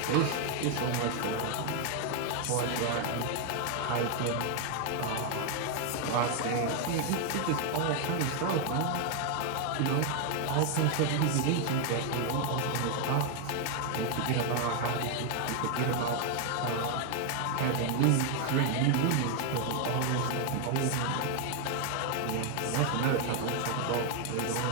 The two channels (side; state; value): both; different; correlation 0.01